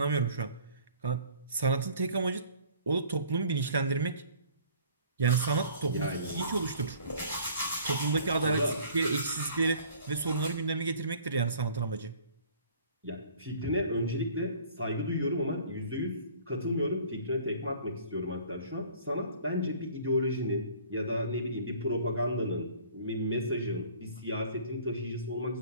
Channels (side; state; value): both; inverted; correlation -0.51